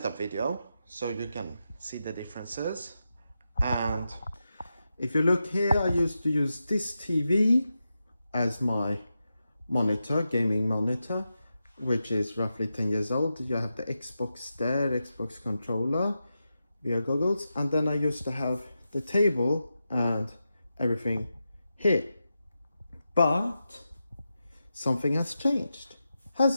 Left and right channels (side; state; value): both; inverted; correlation -0.89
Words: video, so you can see the differences. And if you look here, I used to use this TV as my monitor, gaming monitor, which is roughly 10 years old. You have the Xbox there, Xbox controller, VR goggles, and then I used to have the table and everything here. But something has changed,